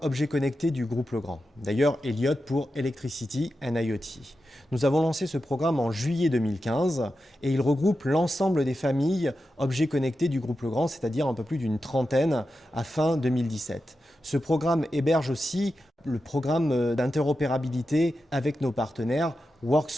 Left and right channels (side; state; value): both; normal; correlation 0.90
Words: Objets connectés du groupe Legrand. D'ailleurs, Elliott pour Electricity and IoT. Nous avons lancé ce programme en juillet 2015 et il regroupe l'ensemble des familles objets connectés du groupe Legrand, c'est-à-dire un peu plus d'une trentaine à fin 2017. Ce programme héberge aussi le programme d'interopérabilité avec nos partenaires